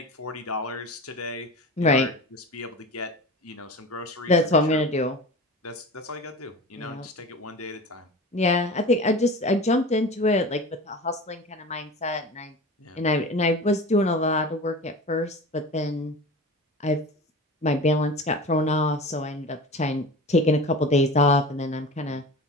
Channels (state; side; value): normal; both; correlation 0.34